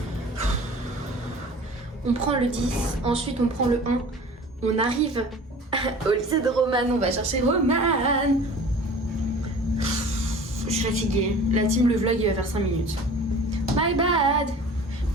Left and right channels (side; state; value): both; normal; correlation 0.43